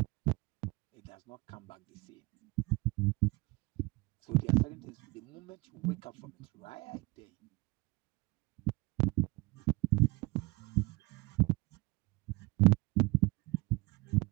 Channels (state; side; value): quieter; left; 24.3 dB